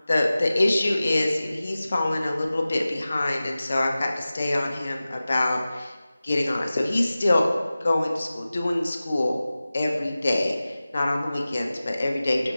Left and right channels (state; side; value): inverted; both; correlation -0.96